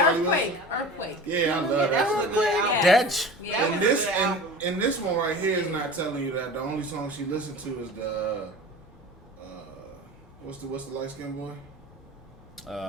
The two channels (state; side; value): normal; both; correlation 0.37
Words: Wilson. Earthquake. Yeah, I love that. was a good album. That. And this one right here is not telling you that. The only song she listened to is the what's the light skinned boy?